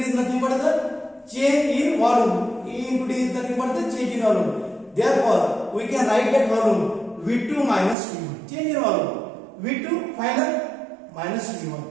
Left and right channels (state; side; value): drops out; left; at 8.0 s